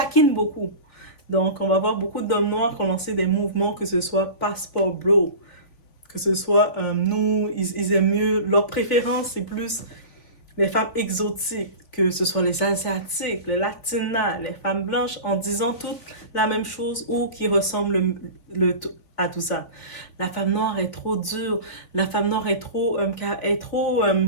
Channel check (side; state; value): right; late; 3.5 ms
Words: beaucoup. Donc, on va voir beaucoup d'hommes noirs qui ont lancé des mouvements, que ce soit Passport Bro, que ce soit nous, ils aiment mieux, leur préférence c'est plus les femmes exotiques, que ce soit les asiatiques, les latinas, les femmes blanches, en disant toutes la même chose ou qui ressemblent à tout ça. La femme noire est trop dure, la femme noire est trop